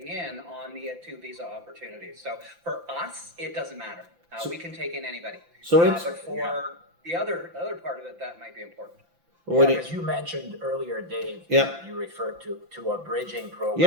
in on the 2 visa opportunities. So for us, it doesn't matter. We can take in anybody. So it's but for the other part of it, that might be important. what do you- Because you mentioned earlier, Dave, Yeah. you referred to a bridging program,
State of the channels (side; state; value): left; late; 5.9 ms